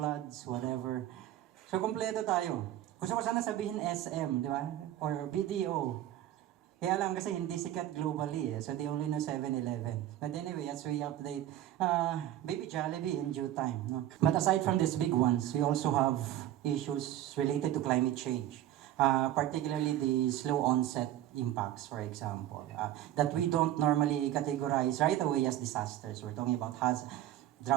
whatever. So, kompleto tayo. Gusto ko sana sabihin SM, di ba? Or BDO. Kaya lang kasi hindi sikat globally So, they only know 7-Eleven. But anyway, as we update, Baby Jollibee in due time. No? But aside from these big ones, we also have issues related to climate change. Particularly the slow onset impacts, for example, that we don't normally categorize right away as disasters. We're talking about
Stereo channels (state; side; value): quieter; left; 13.0 dB